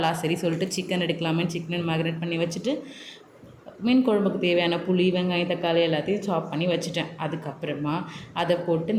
சரி சொல்லிட்டு சிக்கன் எடுக்கலாமேன்னு சிக்கன் மேக்னேட் பண்ணி வச்சுட்டு மீன் குழம்புக்கு தேவையான புளி, வெங்காயம், தக்காளி எல்லாத்தையும் சாப் பண்ணி வச்சுட்டேன். அதுக்கப்புறமா அதை போட்டு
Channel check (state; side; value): identical; both; correlation 1.00